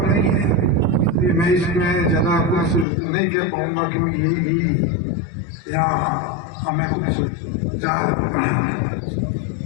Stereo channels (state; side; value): drops out; right; at 2.9 s